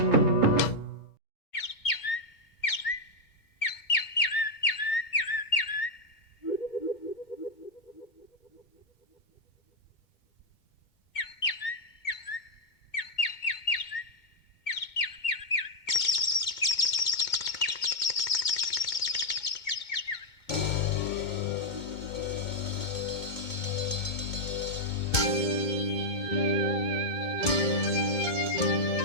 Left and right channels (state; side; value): late; right; 2.2 ms